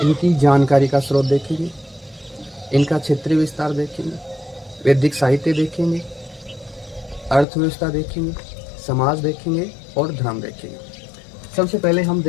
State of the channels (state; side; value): drops out; right; at 7.5 s